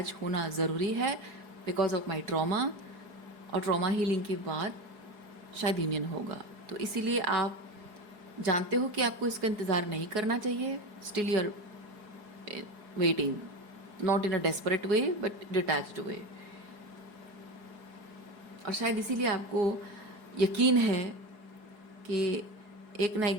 होना ज़रूरी है बिकॉज ऑफ माई ट्रॉमा, और ट्रॉमा हीलिंग के बाद शायद यूनियन होगा। तो इसीलिए आप जानते हो कि आपको इसका इंतज़ार नहीं करना चाहिए, still you are waiting, not in a desperate way but detached way. और शायद इसीलिए आपको यकीन है कि एक ना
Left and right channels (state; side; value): late; left; 4.8 ms